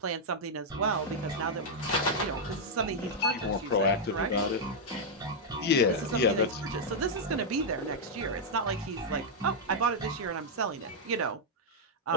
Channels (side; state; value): both; normal; correlation -0.04